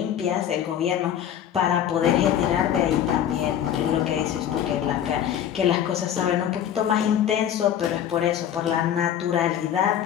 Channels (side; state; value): right; quieter; 10.0 dB